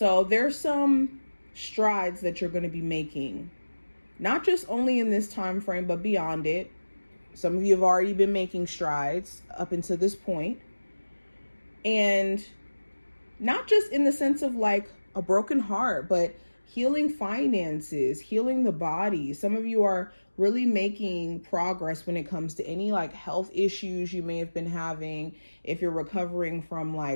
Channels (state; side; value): inverted; both; correlation -1.00